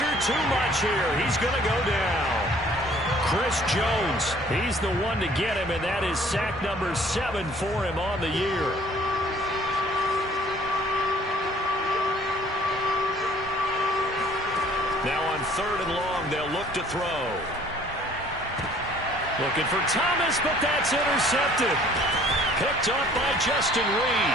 too much here. He's going to go down. Chris Jones, he's the one to get him, and that is sack number 7 for him on the year. Now on 3rd and long, they'll look to throw. Looking for Thomas, but that's intercepted. Picked up by Justin Reed.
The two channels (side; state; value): both; normal; correlation 0.55